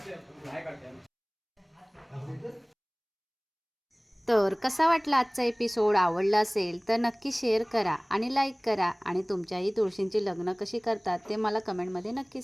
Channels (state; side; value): identical; both; correlation 1.00